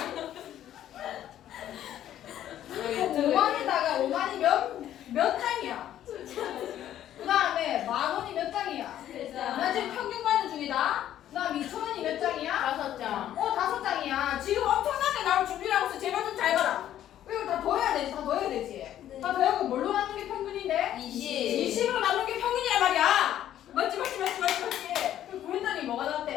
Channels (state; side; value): quieter; right; 11.6 dB